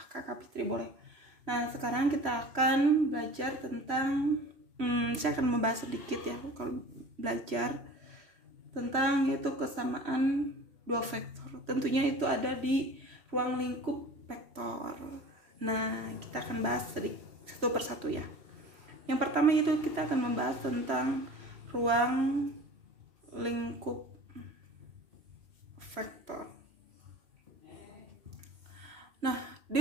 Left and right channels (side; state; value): left; late; 3.0 ms